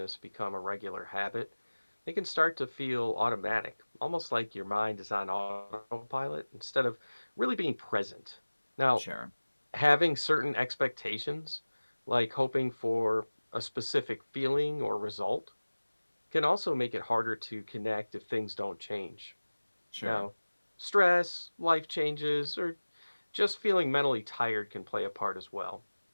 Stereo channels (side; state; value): both; inverted; correlation -1.00